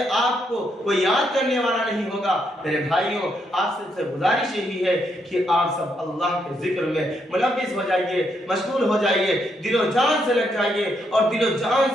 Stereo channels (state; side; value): normal; both; correlation 0.77